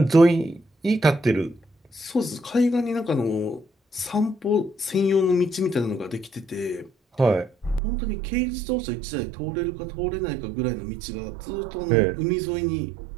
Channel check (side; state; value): left; drops out; at 7.8 s